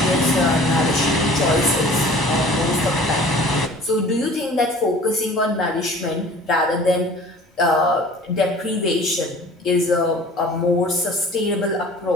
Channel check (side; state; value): both; normal; correlation 0.47